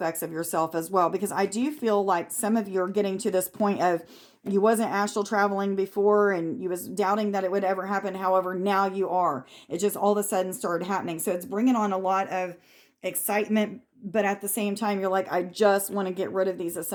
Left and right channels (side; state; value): both; identical; correlation 1.00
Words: of yourself as well, because I do feel like some of you are getting to this point of you wasn't astral traveling before and you was doubting that it would ever happen. However, now you are. It just all of a sudden started happening. So it's bringing on a lot of excitement, but at the same time, you're like, I just want to get rid of these